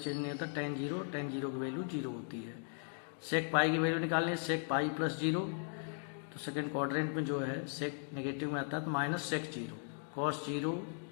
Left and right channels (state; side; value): silent; right; 53 dB below the other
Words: नहीं होता, टेन जीरो की वैल्यू 0 होती है. सेक पाई की वैल्यू निकालनी है, सेक पाई प्लस 0, तो सेकेंड क्वाड्रेंट में जो है सेक नेगेटिव में आता है तो माइनस सेक 0. कॉस 0